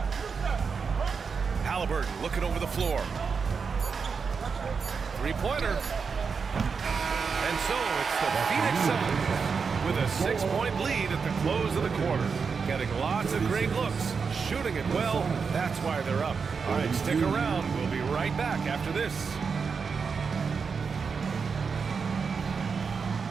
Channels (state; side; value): quieter; left; 5.5 dB